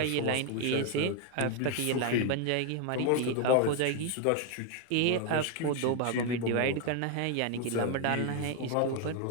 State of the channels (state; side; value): different; both; correlation 0.01